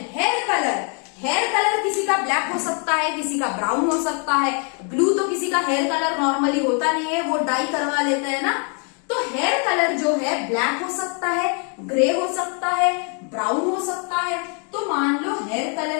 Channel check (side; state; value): right; quieter; 38.9 dB